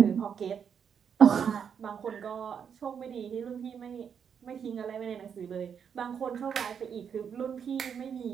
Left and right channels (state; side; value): quieter; left; 7.4 dB